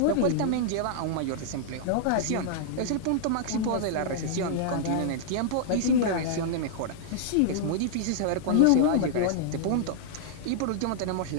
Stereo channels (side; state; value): both; different; correlation -0.01